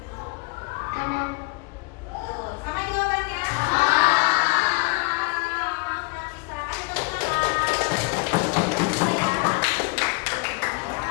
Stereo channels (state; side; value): quieter; right; 29.2 dB